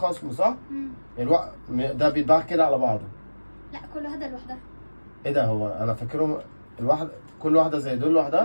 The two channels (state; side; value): inverted; both; correlation -1.00